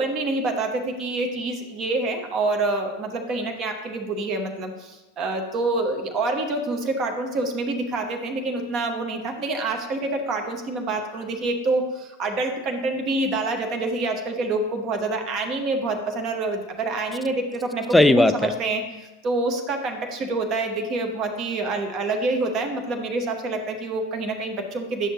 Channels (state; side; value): normal; both; correlation 0.50